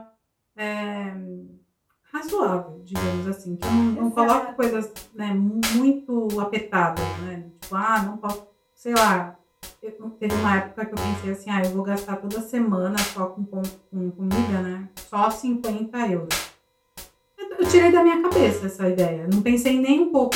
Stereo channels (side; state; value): both; identical; correlation 1.00